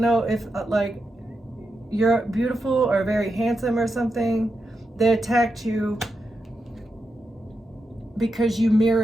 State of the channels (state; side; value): normal; both; correlation 0.87